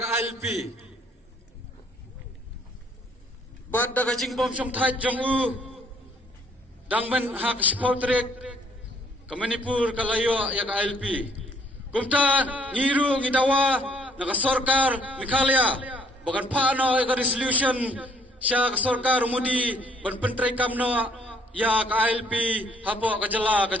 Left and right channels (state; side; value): normal; both; correlation 0.63